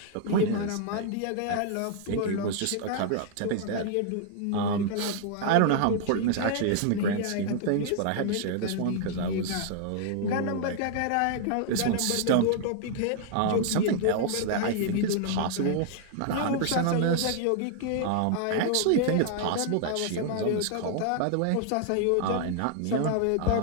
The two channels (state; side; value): different; both; correlation 0.00